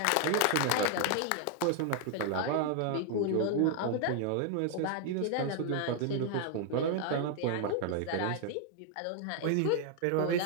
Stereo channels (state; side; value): different; both; correlation 0.00